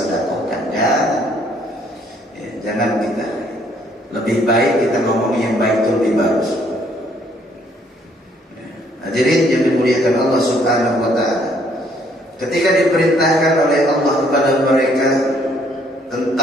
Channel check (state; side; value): normal; both; correlation 0.65